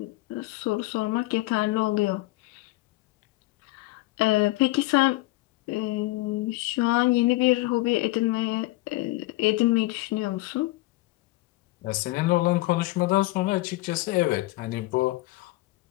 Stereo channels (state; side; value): quieter; right; 19.4 dB